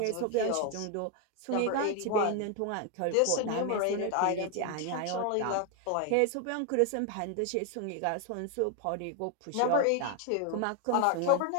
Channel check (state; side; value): different; both; correlation 0.01